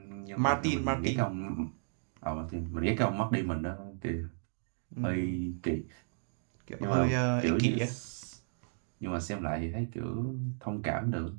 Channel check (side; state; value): left; silent; digital silence